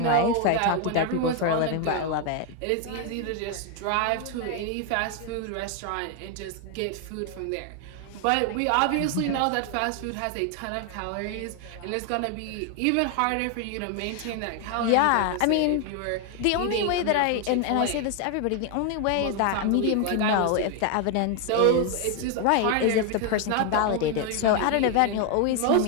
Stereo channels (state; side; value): different; both; correlation 0.01